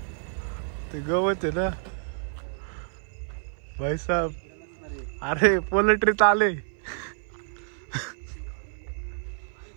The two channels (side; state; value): left; silent; 57 dB below the other